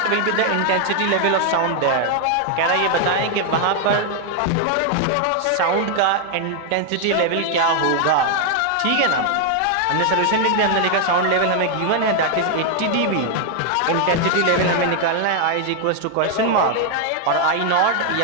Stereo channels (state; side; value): different; both; correlation 0.00